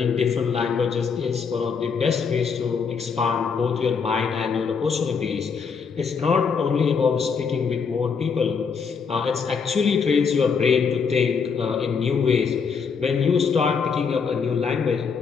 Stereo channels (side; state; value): right; quieter; 5.8 dB